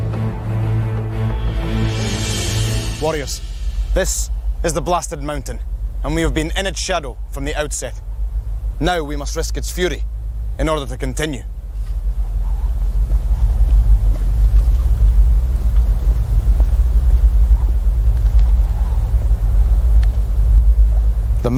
Warriors, this is the blasted mountain, and we have been in its shadow from the outset. Now we must risk its fury in order to continue. The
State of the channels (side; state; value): both; identical; correlation 1.00